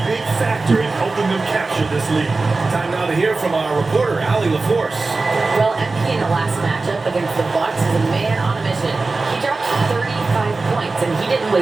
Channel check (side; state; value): left; quieter; 3.7 dB